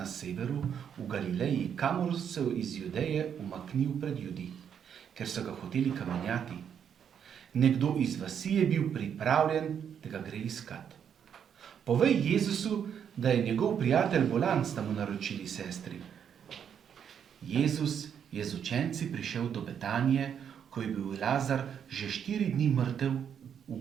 severu, v Galileji, kamor se iz Judeje umaknil pred Judi, ker so ga hoteli kamenjati. Nekdo iz vasi je bil pripravljen, da ga gre iskat. Povej Jezusu, da je njegov prijatelj bolan, sta mu naročili sestri. Jezus je z učenci prišel do Betanije, ko je bil Lazar že 4 dni mrtev v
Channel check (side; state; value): left; quieter; 8.2 dB